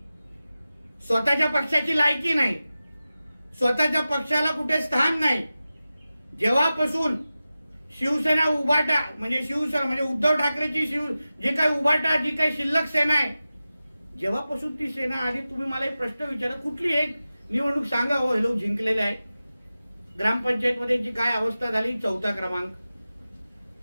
स्वतःच्या पक्षाची लायकी नाही, स्वतःच्या पक्षाला कुठे स्थान नाही. जेव्हापासून शिवसेना उभाटा म्हणजे शिवसेना म्हणजे उद्धव ठाकरेची जी काही उभाटा जी काही शिल्लक सेना आहे, जेव्हापासून ती सेना आली, तुम्ही मला एक प्रश्न विचारा, कुठली एक निवडणूक सांगा हो हे लोक जिंकलेले आहे? ग्रामपंचायत मध्ये जी काय अवस्था झाली, 4था क्रमांक.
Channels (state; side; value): inverted; both; correlation -0.95